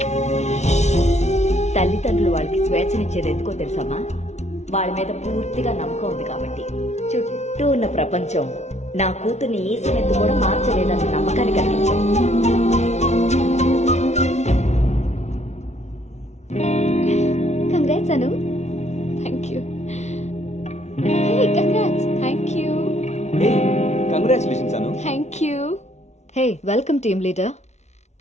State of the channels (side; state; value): right; late; 0.32 ms